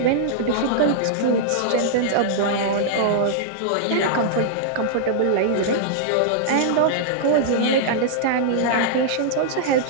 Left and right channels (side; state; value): both; different; correlation -0.01